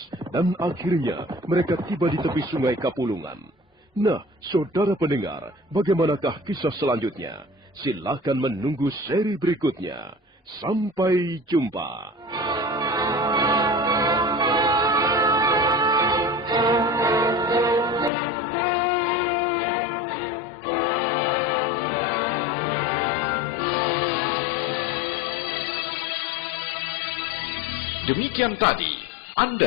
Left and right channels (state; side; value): drops out; right; at 18.1 s